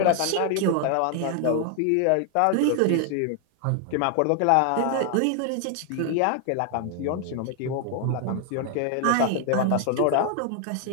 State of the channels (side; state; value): both; different; correlation 0.00